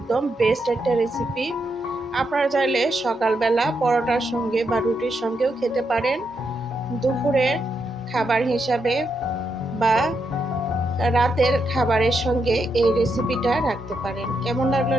বেস্ট একটা রেসিপি। আপনারা চাইলে সকালবেলা পরোটার সঙ্গে বা রুটির সঙ্গেও খেতে পারেন, দুপুরের খাবার হিসাবে বা রাতের খাবারের সঙ্গে এই রেসিপিটা রাখতে পারেন। কেমন লাগলো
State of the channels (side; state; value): both; normal; correlation 0.82